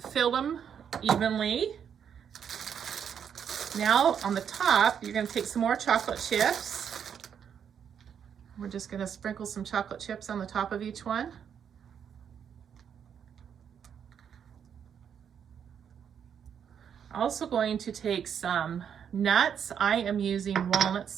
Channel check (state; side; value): quieter; left; 8.0 dB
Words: filled them evenly. Now on the top, you're gonna take some more chocolate chips. We're just gonna sprinkle some chocolate chips on the top of each one. Also going to take some nuts. I am using